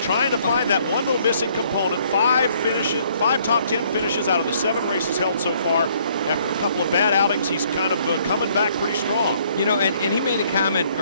trying to find that one little missing component. 5 top 10 finishes out of the 7 races held so far. After a couple of bad outings, he's kind of coming back pretty strong. You know, and he made a comment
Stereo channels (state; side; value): inverted; both; correlation -0.64